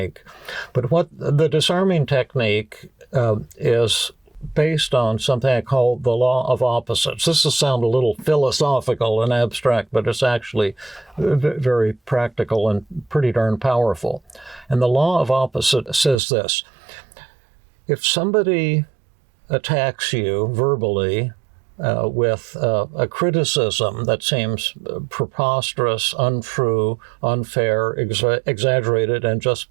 But what the disarming technique is based on something I call the law of opposites. This will sound a little philosophical and abstract, but it's actually very practical and pretty darn powerful. And the law of opposites says this: if somebody attacks you verbally with a criticism that seems preposterous, untrue, unfair, exaggerated, and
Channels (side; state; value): left; drops out; at 16.2 s